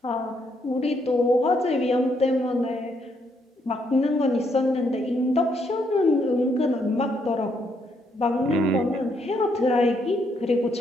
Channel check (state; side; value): normal; both; correlation 0.74